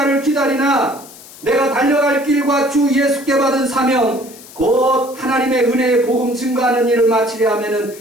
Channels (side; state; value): left; noise; hiss, 19 dB below the sound